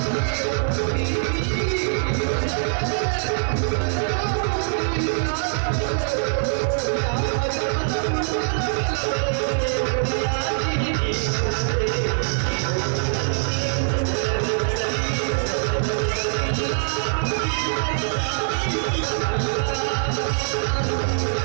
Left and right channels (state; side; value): silent; left; 63 dB below the other